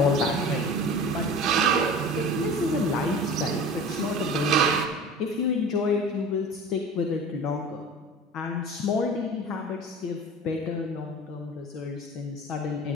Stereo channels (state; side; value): normal; both; correlation 0.37